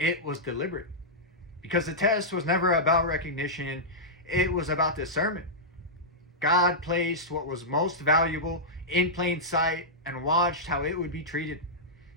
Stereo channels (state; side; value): normal; both; correlation -0.11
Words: was deliberate. Because the test was never about recognition, it was about discernment. God placed what was most valuable in plain sight and watched how it would be treated,